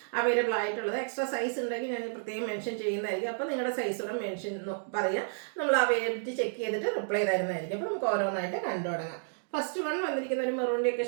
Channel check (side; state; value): left; silent; digital silence